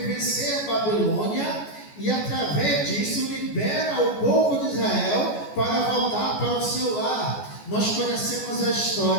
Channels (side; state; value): right; late; 14 ms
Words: vencer Babilônia e através disso libera o povo de Israel para voltar para o seu lar. Nós conhecemos a